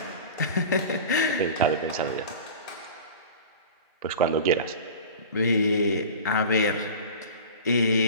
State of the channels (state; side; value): inverted; both; correlation -0.35